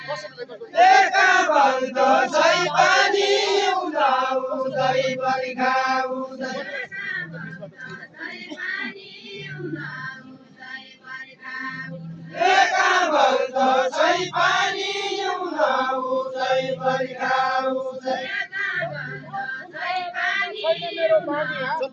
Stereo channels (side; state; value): both; identical; correlation 1.00